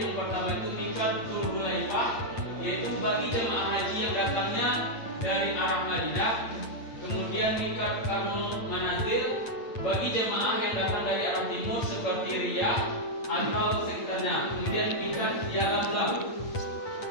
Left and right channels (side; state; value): right; late; 8.7 ms